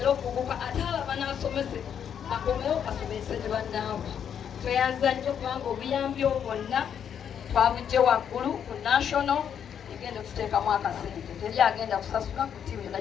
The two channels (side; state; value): right; quieter; 8.4 dB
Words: okuguka ate abo abanasomese akomewo asomese ne bannaabwe tweyanza nnyo kubanga obuyambi bwonna twabujje waggulu ku national egenda okututeekamu akasente teri agenda kusasula ku ttiimu yonna